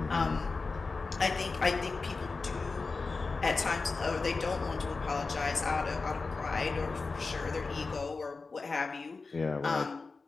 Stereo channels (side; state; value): right; quieter; 4.1 dB